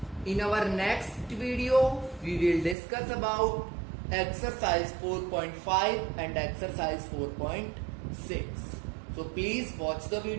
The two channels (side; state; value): left; drops out; at 2.8 s